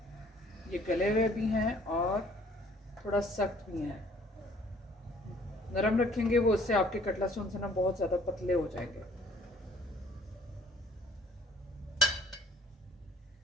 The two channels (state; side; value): normal; both; correlation 0.57